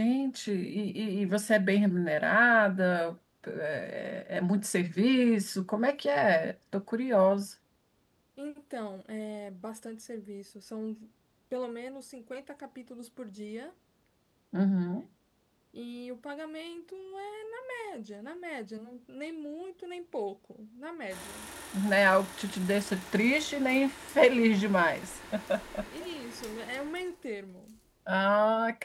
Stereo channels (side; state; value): both; identical; correlation 1.00